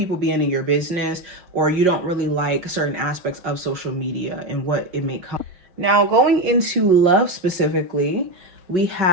being in your business, or you don't really like certain aspects of social media and what it may come. Now, going into love specifically, we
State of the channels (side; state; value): left; late; 5.6 ms